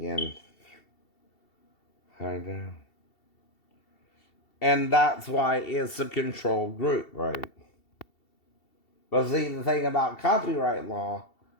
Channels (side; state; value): right; late; 2.7 ms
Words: I know. And that's why it's a controlled group, right? But see, the thing about copyright law